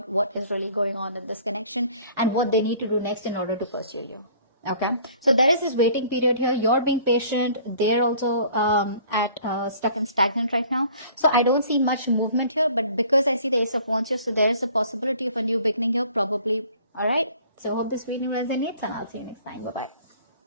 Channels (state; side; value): inverted; both; correlation -0.52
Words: what is really going on in this connection and what they need to do next in order to pursue you. Okay, so there is this waiting period here. You're being patient. They're also stuck and stagnant right now. So I don't see much movement here, but because I see the Ace of Wands here, so there is a possibility of a new beginning here, probably. All right. So hope this video resonates, and I'll see you next time. Bye